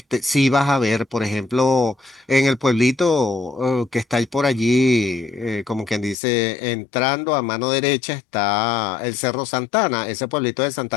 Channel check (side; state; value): right; drops out; at 6.2 s